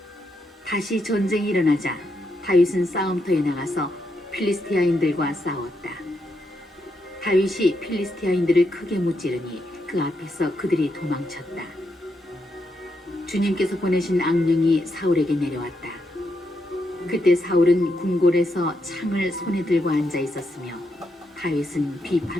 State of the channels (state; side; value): normal; both; correlation 0.81